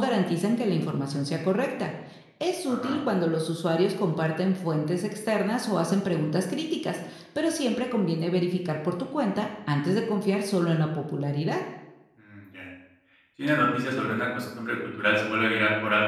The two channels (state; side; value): identical; both; correlation 1.00